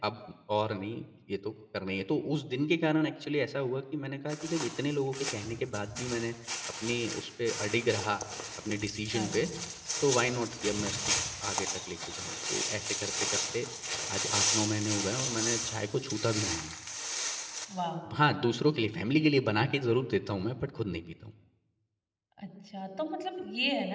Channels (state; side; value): identical; both; correlation 1.00